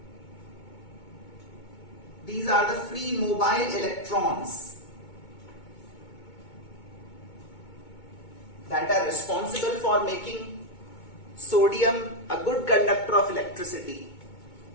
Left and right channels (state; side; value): late; right; 2.2 ms